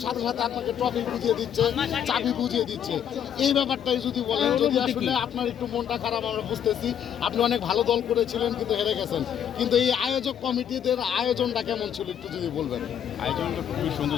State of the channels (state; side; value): quieter; right; 9.2 dB